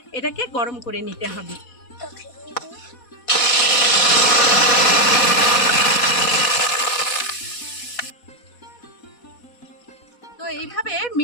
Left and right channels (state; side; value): late; right; 4.1 ms